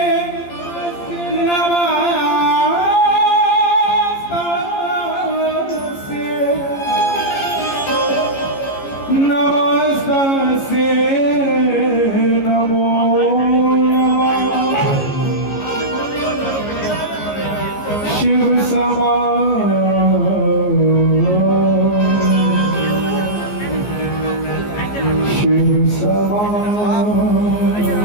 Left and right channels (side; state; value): right; late; 14 ms